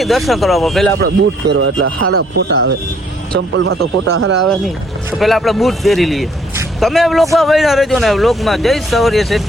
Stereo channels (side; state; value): both; normal; correlation 0.65